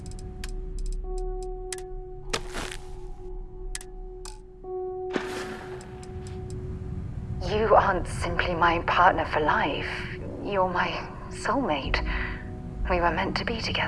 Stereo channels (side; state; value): both; identical; correlation 1.00